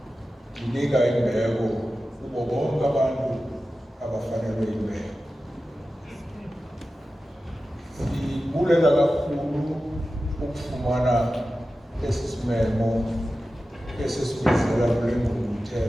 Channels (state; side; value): normal; both; correlation 0.94